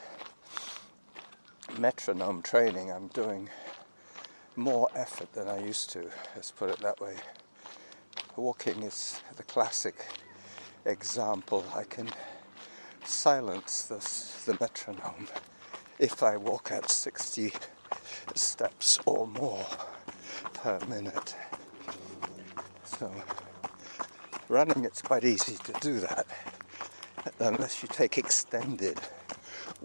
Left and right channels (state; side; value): inverted; both; correlation -1.00